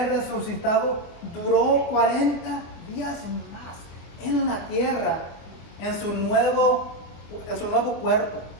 resucitado, duró 40 días más en la tierra, en su nuevo cuerpo.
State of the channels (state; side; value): late; right; 24 ms